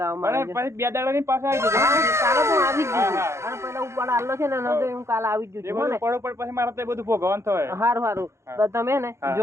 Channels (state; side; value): late; left; 0.13 ms